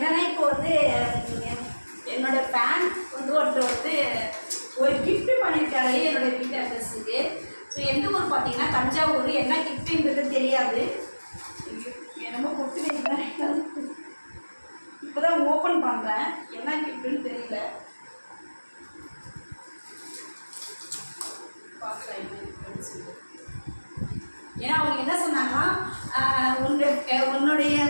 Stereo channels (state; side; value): inverted; both; correlation -1.00